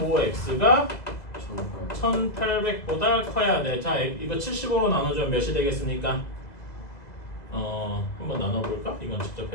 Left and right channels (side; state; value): right; late; 2.0 ms